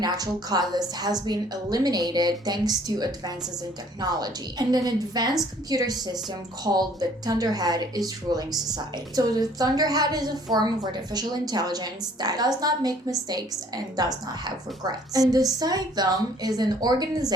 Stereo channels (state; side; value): normal; both; correlation 0.57